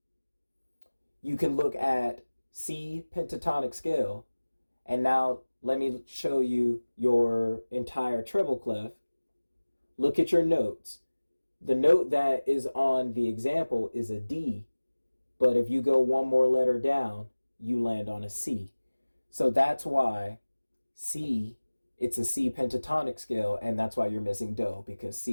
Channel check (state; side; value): inverted; both; correlation -1.00